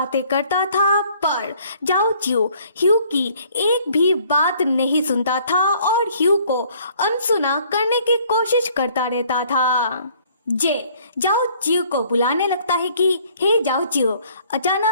करता था, पर जाओ चिऊ ह्यू की एक भी बात नहीं सुनता था और ह्यू को अनसुना करने की कोशिश करता रहता था। जे जाओ चिऊ को बुलाने लगता है कि हे जाओ चिऊ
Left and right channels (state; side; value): inverted; both; correlation -0.59